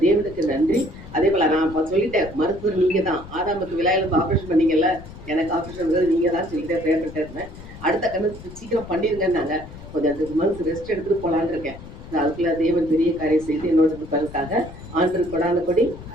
தேவனுக்கு நன்றி. அதே போல நான் இப்போ சொல்லிட்டேன், மருத்துவர் நீங்க தான். ஆதாமுக்கு விழாயிலிருந்து ஆப்ரேஷன் பண்ணீங்கல்ல, எனக்கு ஆப்ரேஷன் நீங்க தான் சொல்லிட்டே ப்ரேயர் பண்ணிட்டே இருந்தேன். அடுத்த கண்ணு சீக்கிரம் பண்ணிருங்கன்னாங்க. கொஞ்சம் 2 மந்த்ஸ் ரெஸ்ட் எடுத்துட்டு போலான்னு இருக்கேன். அதுக்குள்ள தேவன் பெரிய காரியம் செய்து என்னோட பலனுக்காக ஆண்டு கொடான கொடி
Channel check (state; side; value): noise; left; rumble, 15 dB below the sound